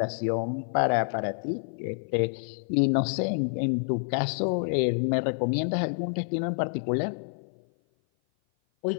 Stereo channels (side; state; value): right; silent; 56 dB below the other